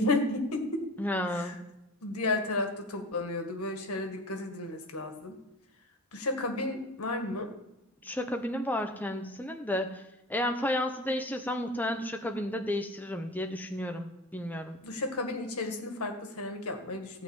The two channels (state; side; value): normal; both; correlation 0.35